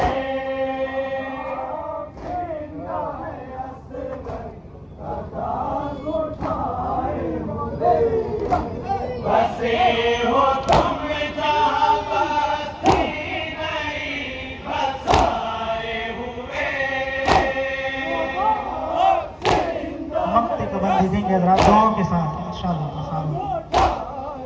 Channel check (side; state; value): both; identical; correlation 1.00